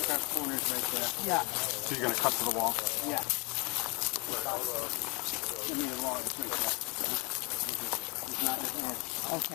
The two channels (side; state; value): right; quieter; 29.6 dB